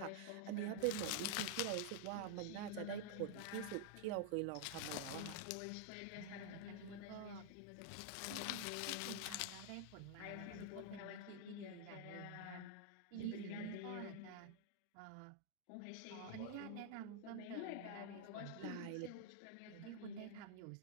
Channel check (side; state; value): both; different; correlation -0.01